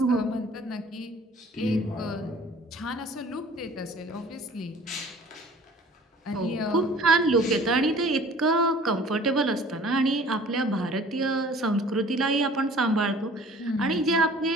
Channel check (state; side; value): normal; both; correlation 0.49